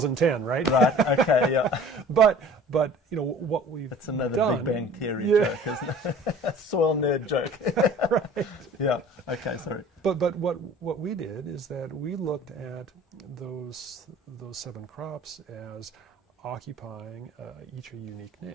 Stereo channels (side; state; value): both; normal; correlation 0.46